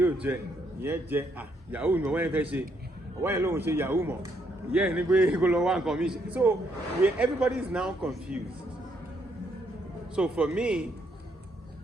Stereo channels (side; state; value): both; normal; correlation 0.73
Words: ò jẹ, ìyẹn jẹ, yahoo ni ọwọ́ yẹn fẹ́ ṣe, ọwọ́ yẹn lòun ṣe yahoo mọ̀, ìyẹn ní pé kó lọ wá nǹkan mi ṣe. So everybody is now confused. So for me,